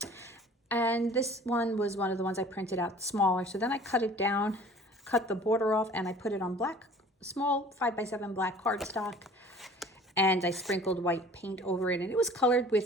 And this one was one of the ones I printed out smaller. So then I cut it down, cut the border off, and I put it on small 5 by 7 black cardstock. And I sprinkled white paint over it. And it was colored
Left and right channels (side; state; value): both; normal; correlation 0.48